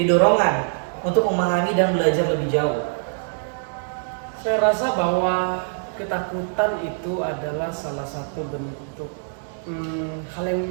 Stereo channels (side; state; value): left; silent; digital silence